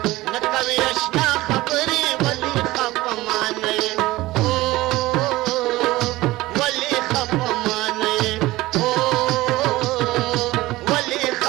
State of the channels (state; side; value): quieter; left; 18.4 dB